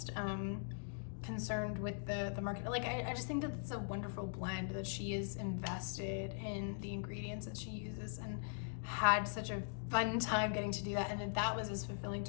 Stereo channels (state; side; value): silent; right; digital silence